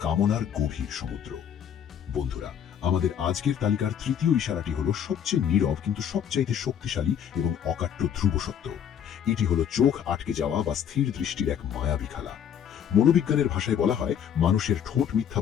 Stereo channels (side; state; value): right; quieter; 8.9 dB